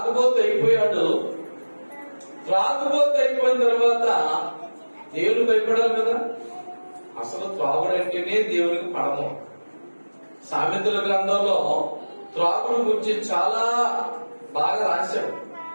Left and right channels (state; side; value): inverted; both; correlation -1.00